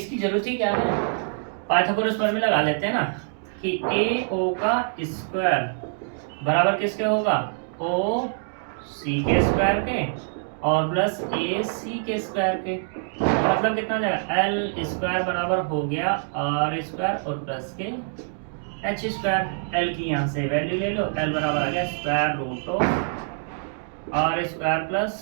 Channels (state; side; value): silent; left; digital silence